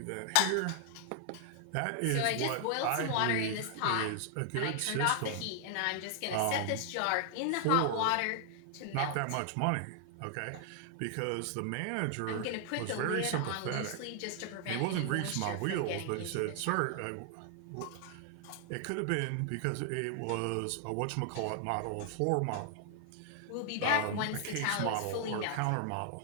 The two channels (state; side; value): different; both; correlation 0.00